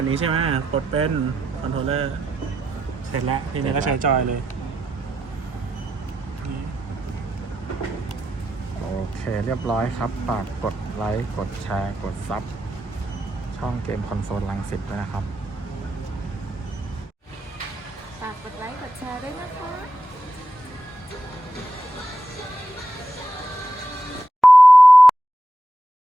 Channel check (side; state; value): both; normal; correlation 0.86